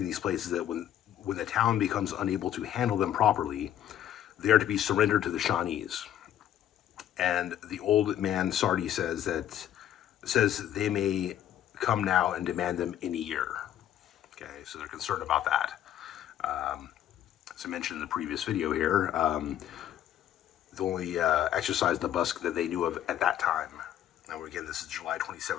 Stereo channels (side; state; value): right; quieter; 11.1 dB